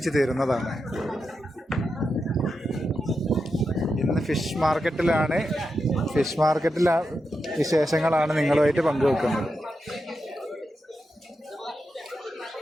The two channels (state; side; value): normal; both; correlation 0.87